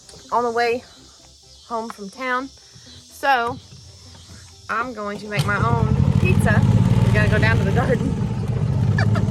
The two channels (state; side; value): identical; both; correlation 1.00